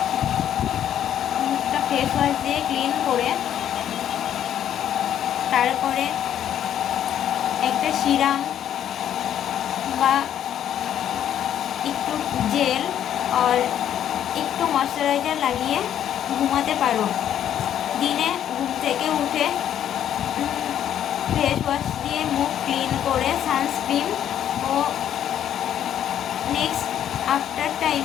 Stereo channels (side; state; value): right; quieter; 10.3 dB